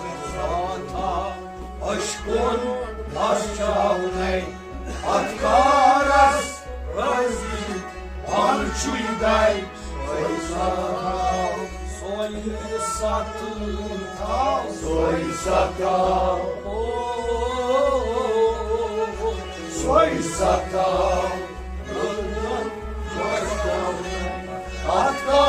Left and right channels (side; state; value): both; identical; correlation 1.00